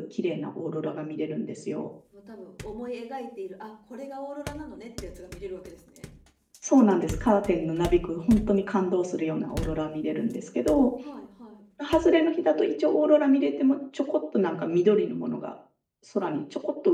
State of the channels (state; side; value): identical; both; correlation 1.00